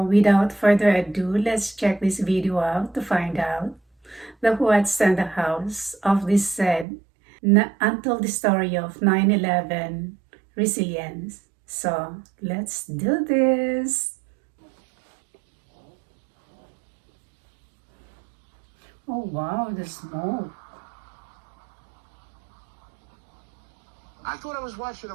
without further ado, let's check this video out to find out the what's and the hows of this said untold story of 9/11 resilience. So let's do this. Oh wow, the smoke. I thought I was watching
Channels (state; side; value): drops out; left; at 6.9 s